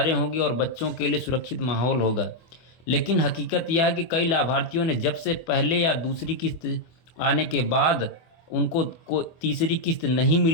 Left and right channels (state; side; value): late; right; 24 ms